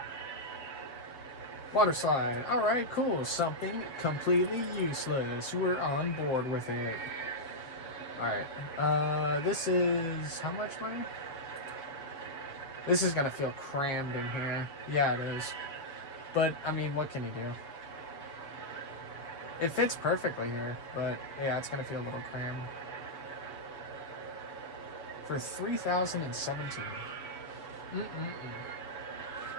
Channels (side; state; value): right; late; 7.3 ms